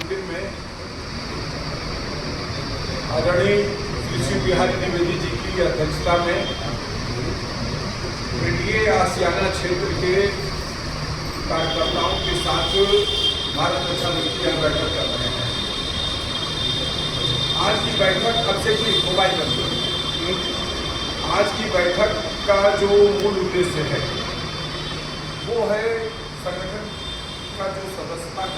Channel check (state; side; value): identical; both; correlation 1.00